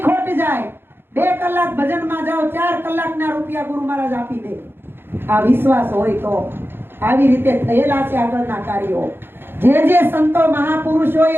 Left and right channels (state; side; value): late; left; 0.10 ms